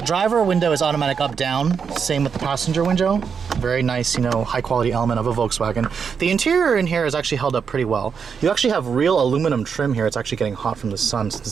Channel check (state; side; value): quieter; left; 6.4 dB